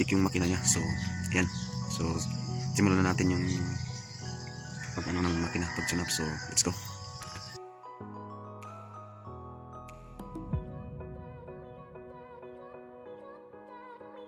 yung makina niya. So yan, so simulan na natin yung pag ano ng makina, pag tune up. So let's go.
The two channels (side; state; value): both; identical; correlation 1.00